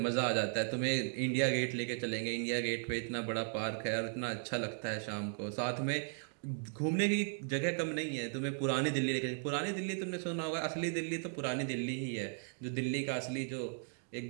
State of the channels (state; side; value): silent; left; 53 dB below the other